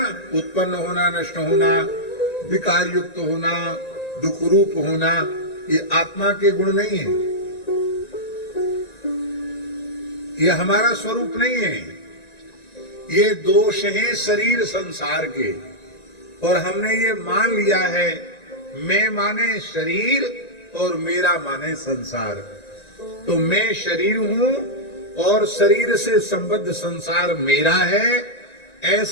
उत्पन्न होना, नष्ट होना, विकार युक्त होना, दुख रूप होना, ये आत्मा के गुण नहीं है, ये हमारा स्वरूप नहीं है। ये दोष हैं शरीर संसार के, और हमने ये मान लिया है, मैं माने शरीर और मेरा माने संसार। तो मैं शरीर हूं और शरीर से संबद्ध संसार मेरा है,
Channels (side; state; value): right; late; 1.9 ms